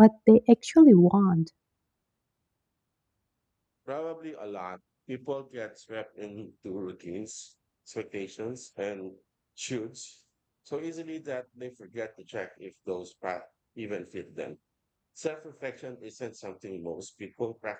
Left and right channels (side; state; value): both; identical; correlation 1.00